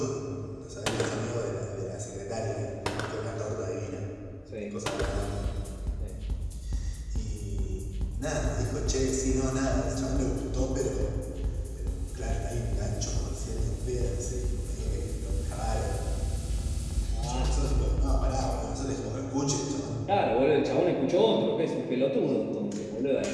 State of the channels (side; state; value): both; identical; correlation 1.00